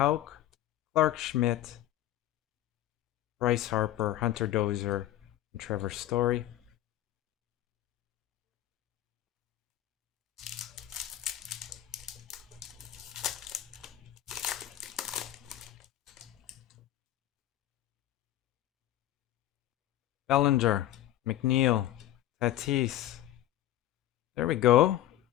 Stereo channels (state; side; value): quieter; right; 13.8 dB